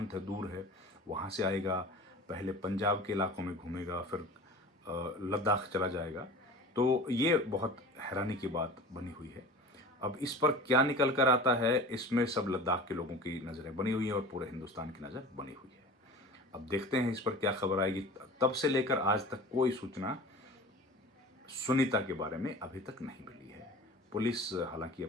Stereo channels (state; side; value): normal; both; correlation 0.37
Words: है, दूर है, वहाँ से आएगा, पहले पंजाब के इलाकों में घूमेगा, फिर लद्दाख चला जाएगा। तो ये बहुत हैरानी की बात बनी हुई है। अब इस पर क्या निकल कर आता है, इसमें सब लद्दाख के लोगों की नज़रें बनी हुई हैं और पूरे हिंदुस्तान की नज़र बनी हुई है। अब देखते हैं इस पर क्या खबर आएगी। तब से लेकर आज तक कोई सूचना सुनीता के बारे में अभी तक नहीं मिली है। पुलिस हालांकि